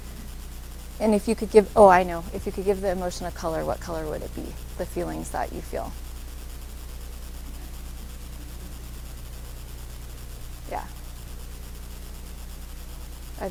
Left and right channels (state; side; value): identical; both; correlation 1.00